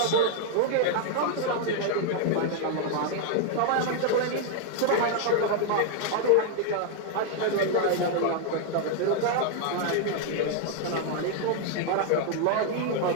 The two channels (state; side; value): different; both; correlation 0.00